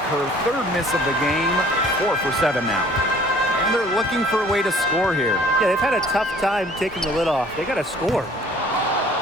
third miss of the game. 4 for 7 now. And they're looking for a way to score here. Yeah, they've had a tough time taking the lid off. They got to score.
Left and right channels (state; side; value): normal; both; correlation 0.54